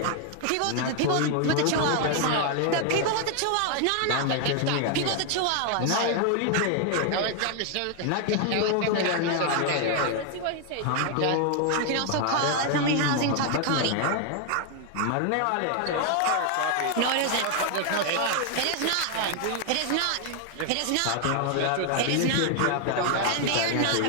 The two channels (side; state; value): both; different; correlation 0.00